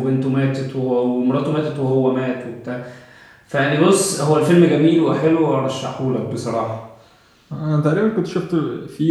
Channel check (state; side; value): identical; both; correlation 1.00